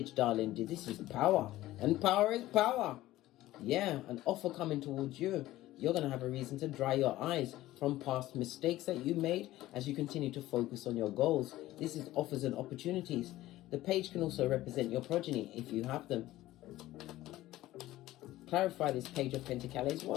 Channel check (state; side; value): quieter; right; 15.9 dB